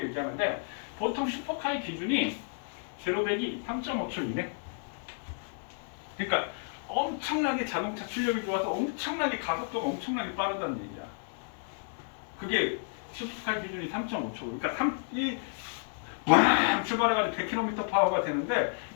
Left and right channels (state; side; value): silent; right; 57 dB below the other